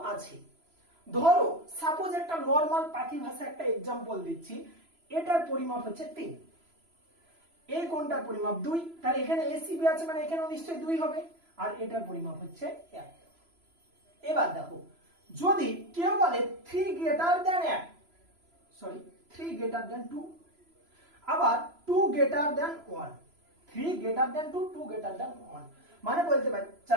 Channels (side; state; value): left; late; 3.0 ms